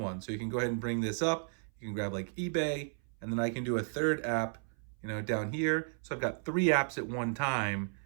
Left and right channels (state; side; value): silent; left; 55 dB below the other